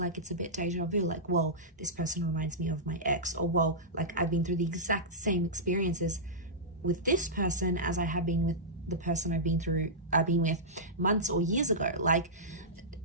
it's a bit deja vu, like, well, this person reminds me of my ex, or well, like I've been through the exact same experiences with this person as I have been with the person I've been with months or years ago. Like,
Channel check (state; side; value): normal; both; correlation -0.14